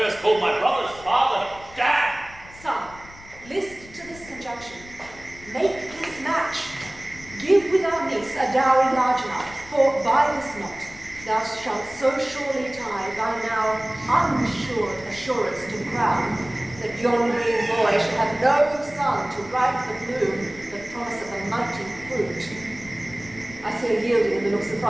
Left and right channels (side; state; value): left; noise; rumble, 20 dB below the sound